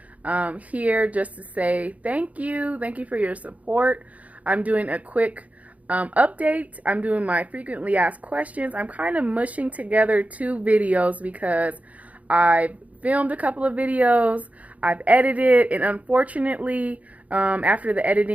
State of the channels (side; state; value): left; late; 0.070 ms